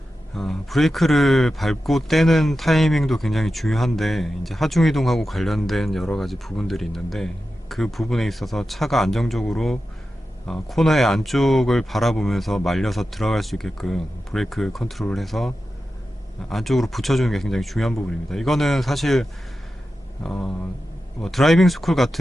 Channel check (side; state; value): both; normal; correlation 0.92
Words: 브레이크를 밟고 떼는 타이밍도 굉장히 중요한데, 이제 하중 이동하고 관련된 여러 가지 부분들이 있는데, 그 부분에 있어서 차가 안정적으로 코너의 안쪽을 바라보면서 말려서 들어갈 수 있게끔 브레이크 컨트롤을 해서 안쪽으로 붙여주는 게 굉장히 중요한 부분입니다. 이거는 사실 뭐 드라이빙 스쿨